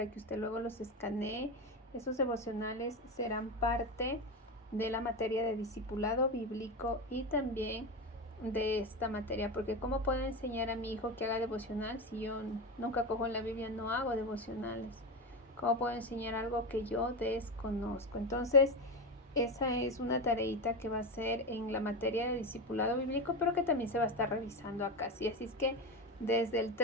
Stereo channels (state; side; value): normal; both; correlation 0.18